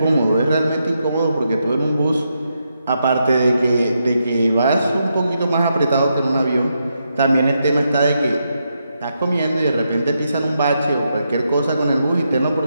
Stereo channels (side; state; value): both; inverted; correlation -0.82